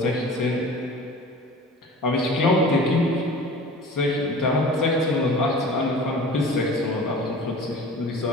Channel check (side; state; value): both; normal; correlation 0.40